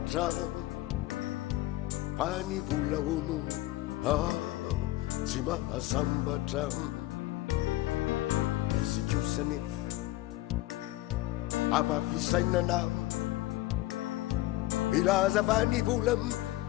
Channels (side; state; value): right; quieter; 17.3 dB